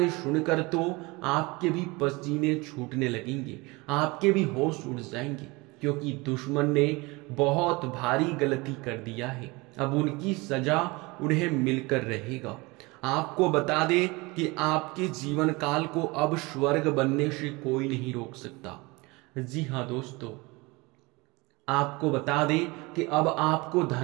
सुनकर तो आपके भी पसीने छूटने लगेंगे, आपके भी होश उड़ जाएंगे, क्योंकि दुश्मन ने बहुत भारी गलती कर दिया है। अब उनकी सजा उन्हें मिलकर रहेगा। आपको बता दे कि आपके जीवन काल को अब स्वर्ग बनने से कोई नहीं रोक सकता। जी हाँ दोस्तों, आपको बता दे कि अब आपको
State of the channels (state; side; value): quieter; left; 24.5 dB